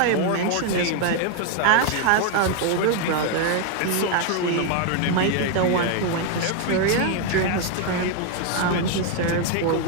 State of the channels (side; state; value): both; different; correlation 0.01